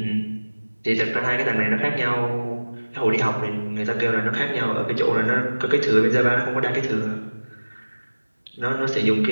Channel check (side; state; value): both; inverted; correlation -1.00